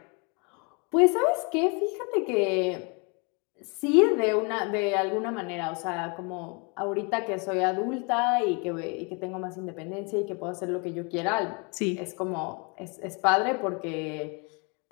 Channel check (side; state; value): right; quieter; 32.9 dB